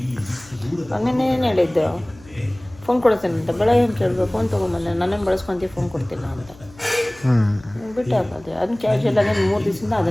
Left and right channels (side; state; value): left; noise; hum, 23 dB below the sound